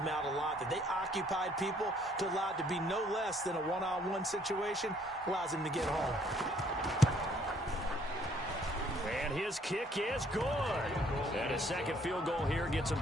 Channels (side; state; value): both; normal; correlation 0.63